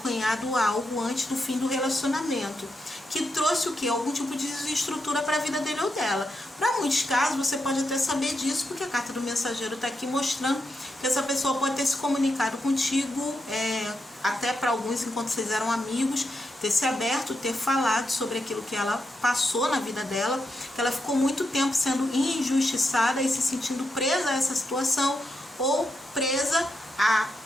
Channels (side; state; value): both; normal; correlation 0.84